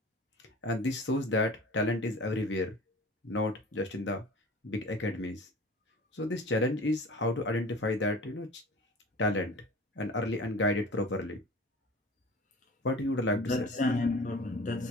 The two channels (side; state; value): both; normal; correlation 0.41